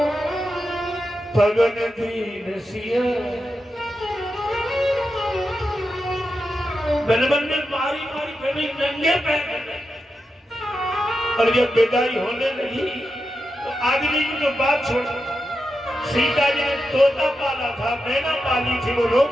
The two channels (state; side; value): normal; both; correlation 0.89